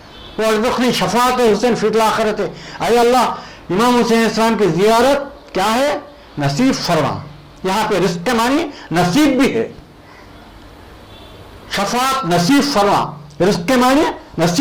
व अर्ज़ुक़नी शफ़ाअत हुसैन फ़िल आख़िरत। अय अल्लाह इमाम हुसैन इस्लाम की ज़ियारत क्या है? नसीब फरमा। यहाँ पे रिस्क के मानी नसीब भी है, शफ़ाअत नसीब फरमा, रिस्क के मानी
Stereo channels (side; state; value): both; identical; correlation 1.00